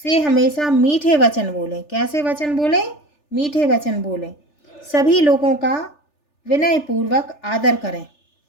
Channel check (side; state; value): right; late; 3.4 ms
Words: हमेशा मीठे वचन बोलें। कैसे वचन बोलें? मीठे वचन बोलें। सभी लोगों का विनय पूर्वक आदर करें।